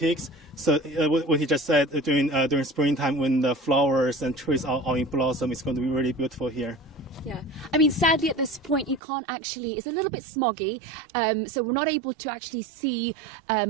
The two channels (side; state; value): left; drops out; at 9.0 s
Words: So what he just said, during springtime when the flowers and trees are all in blossom, it's going to be really beautiful here. Yeah, I mean, sadly at this point you can't actually, it's a little bit smoggy, so we're not able to actually see